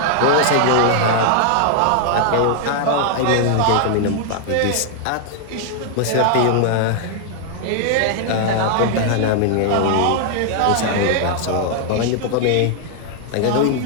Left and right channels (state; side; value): different; both; correlation 0.00